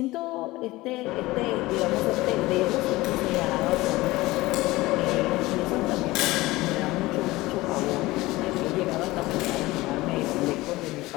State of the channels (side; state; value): right; quieter; 19.5 dB